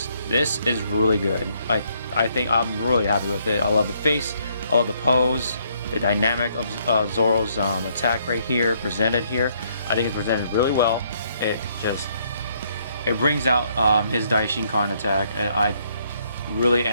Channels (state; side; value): inverted; both; correlation -0.70